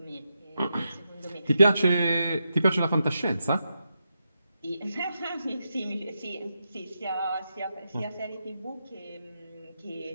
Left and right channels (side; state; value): both; inverted; correlation -0.86